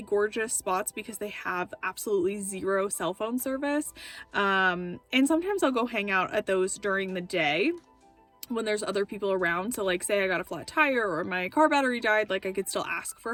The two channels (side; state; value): both; identical; correlation 1.00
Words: gorgeous spots because they have absolutely zero cell phone service, and sometimes I'll go hang out at those during the day when there's other people around. So like say I got a flat tire or my car battery died, like I could still ask